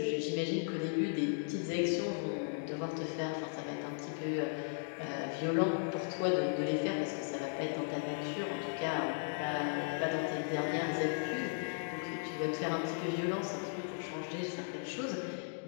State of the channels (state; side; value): silent; right; digital silence